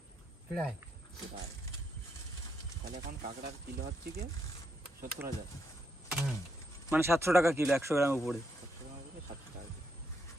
প্রায়। তাহলে এখন কাঁকড়ার কিলো হচ্ছে কি 70,000। মানে 700 টাকা কিলো 100 গ্রাম উপরে। 700 গ্রাম উপরে 700 টাকা।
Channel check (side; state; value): both; normal; correlation 0.78